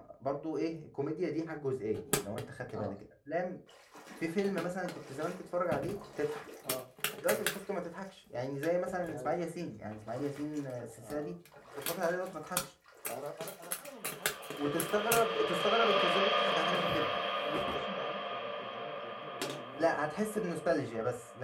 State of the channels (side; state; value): both; identical; correlation 1.00